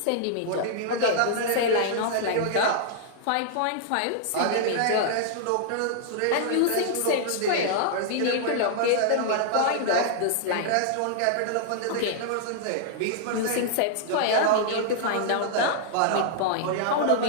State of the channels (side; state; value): both; different; correlation -0.01